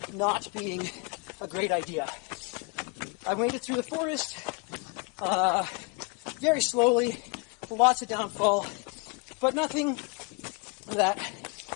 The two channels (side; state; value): right; quieter; 32.2 dB